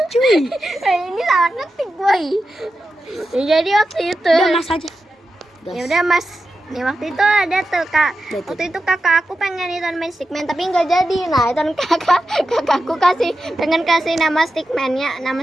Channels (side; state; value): both; normal; correlation 0.90